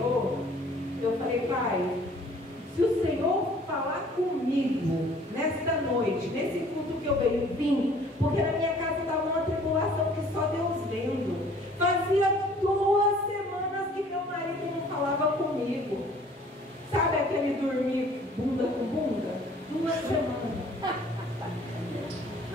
eu falei: Pai, se o Senhor falar comigo nesta noite, nesse culto que eu venho, vim, porque na minha casa estava uma tribulação que só Deus vendo. Fazia 2 semanas que meu marido não falava comigo. Sabe aquele dormir bunda com bunda? 2 semanas.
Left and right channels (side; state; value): both; normal; correlation 0.54